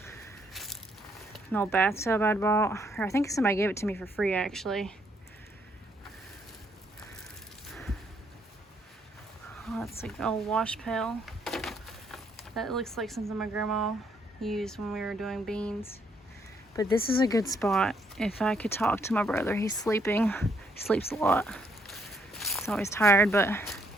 An old bathtub I'd bought, or I think somebody gave it to me for free actually. Oh, that's like an old wash pail. That looks like something my grandma used when we were doing beans. But this is a good spot. If I could talk to my brother, he's sleeping. He sleeps a lot. He's always tired, but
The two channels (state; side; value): normal; both; correlation 0.71